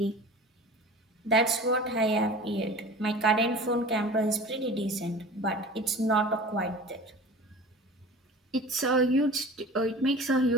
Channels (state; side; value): normal; both; correlation 0.39